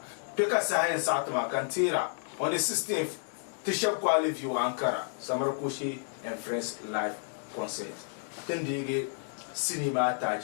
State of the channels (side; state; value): right; silent; 57 dB below the other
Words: Peka science atma kantira on the 16th Tisha Kwali view Ankara Samarakoshi and Friends live concert then they cinema